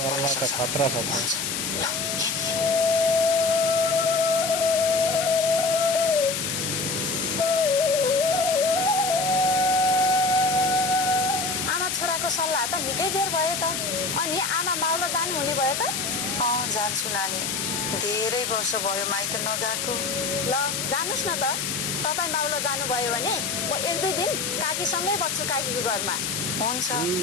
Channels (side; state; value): left; noise; hiss, 2 dB below the sound